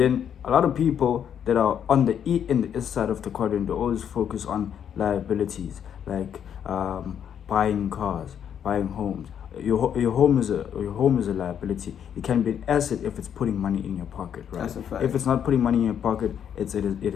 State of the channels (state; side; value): quieter; right; 8.7 dB